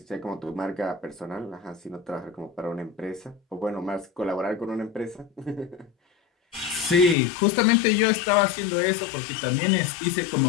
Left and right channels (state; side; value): drops out; right; at 7.2 s